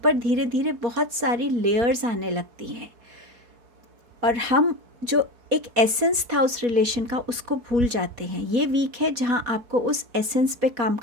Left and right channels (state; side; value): late; left; 4.2 ms